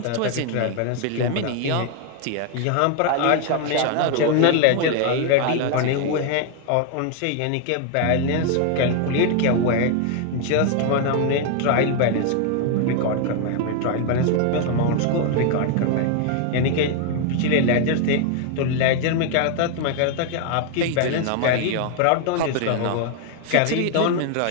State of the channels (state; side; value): different; both; correlation 0.00